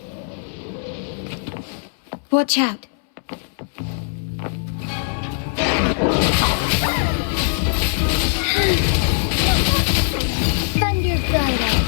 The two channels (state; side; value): silent; right; 65 dB below the other